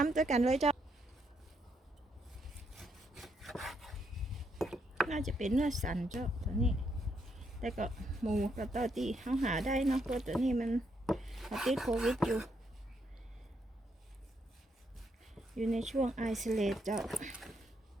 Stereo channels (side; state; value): both; normal; correlation 0.76